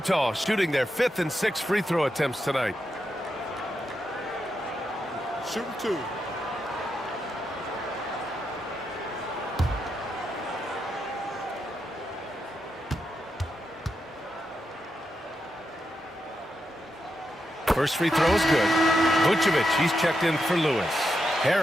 shooting their 5th and 6th free throw attempts tonight. Shooting 2. First free throw is good. Vucevic, he's checked in for Lewis.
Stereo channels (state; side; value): normal; both; correlation 0.85